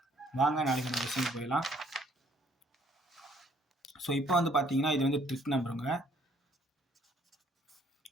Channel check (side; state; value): both; normal; correlation 0.63